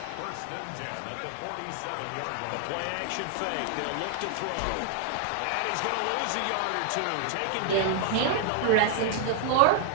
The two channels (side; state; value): both; different; correlation 0.00